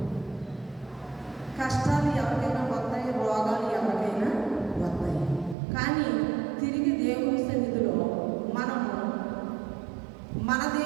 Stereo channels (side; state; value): left; drops out; at 5.6 s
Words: కష్టాలు ఎవరికైనా వస్తాయి, రోగాలు ఎవరికైనా వస్తాయి. కానీ తిరిగి దేవుని సన్నిధిలో మనము మన